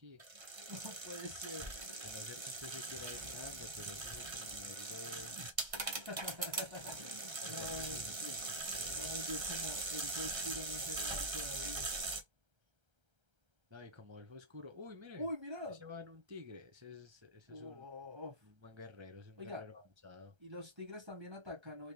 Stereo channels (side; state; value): left; late; 1.3 ms